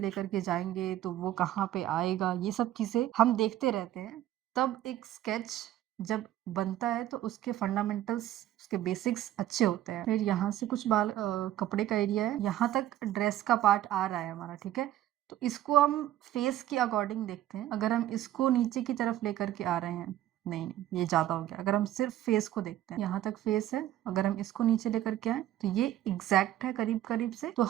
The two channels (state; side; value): quieter; left; 13.2 dB